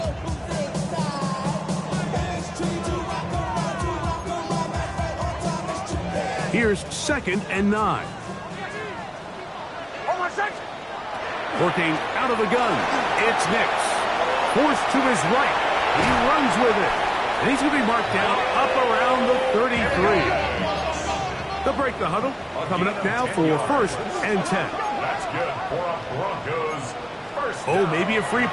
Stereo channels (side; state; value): both; identical; correlation 1.00